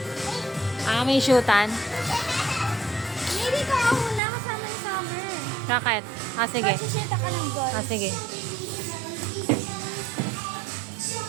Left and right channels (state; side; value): drops out; left; at 4.2 s